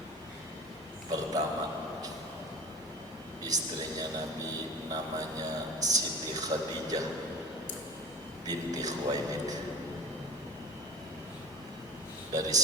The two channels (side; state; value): both; normal; correlation 0.36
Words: Pertama, istrinya Nabi namanya Siti Khadijah binti Khuwailid. Dari